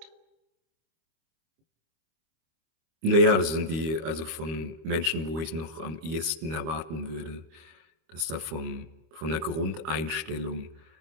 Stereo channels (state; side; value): late; left; 26 ms